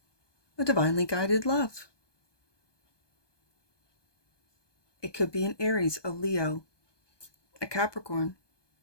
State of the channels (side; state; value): right; late; 1.2 ms